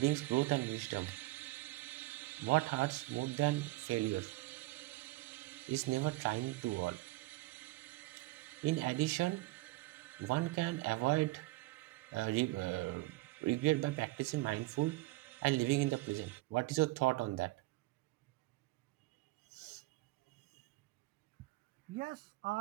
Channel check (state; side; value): quieter; left; 20.6 dB